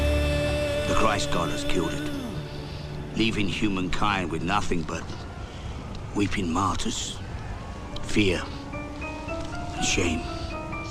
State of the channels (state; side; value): identical; both; correlation 1.00